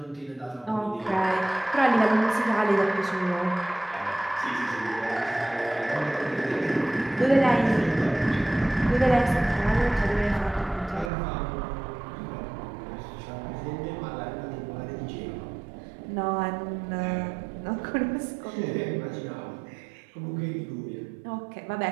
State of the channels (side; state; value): left; drops out; at 11.1 s